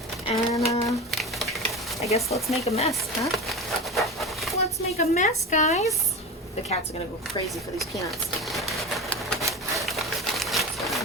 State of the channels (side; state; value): both; normal; correlation 0.28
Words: and I guess let's make a mess, huh? Let's make a mess, guys. The cats are gonna go crazy for these peanuts.